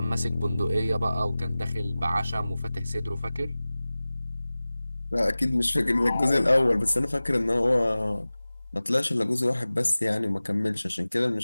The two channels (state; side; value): inverted; both; correlation -0.98